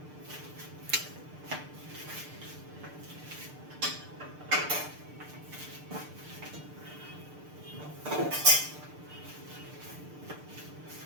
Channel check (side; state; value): left; late; 6.7 ms